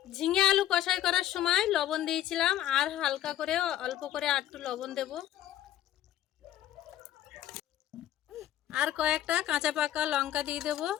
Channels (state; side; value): quieter; right; 12.4 dB